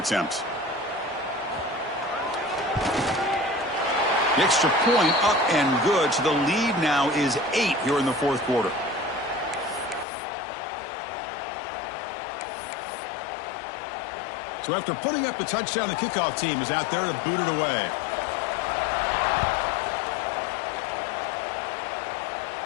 The extra point up and good, so the lead now is 8 here in the fourth quarter. So after putting up the touchdown, the kickoff team is out there to boot it away.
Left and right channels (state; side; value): drops out; right; at 10.1 s